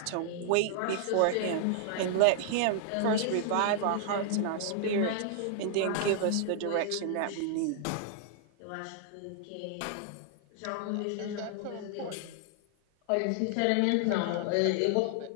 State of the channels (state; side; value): different; both; correlation 0.00